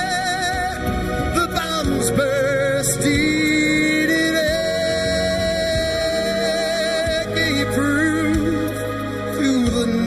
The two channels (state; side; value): identical; both; correlation 1.00